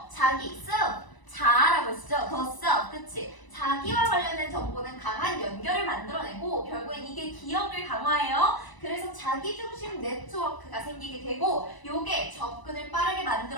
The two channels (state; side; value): late; right; 1.0 ms